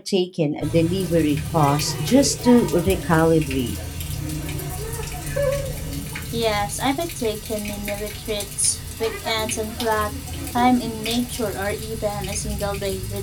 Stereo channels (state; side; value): identical; both; correlation 1.00